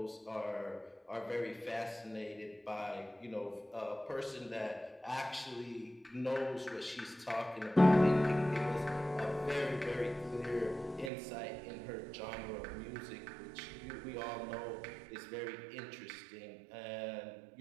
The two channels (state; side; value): drops out; left; at 11.1 s